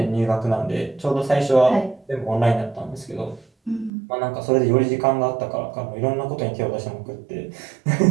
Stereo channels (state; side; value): drops out; left; at 3.9 s